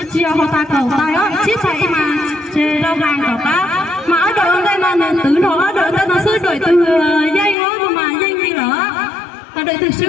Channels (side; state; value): right; drops out; at 7.6 s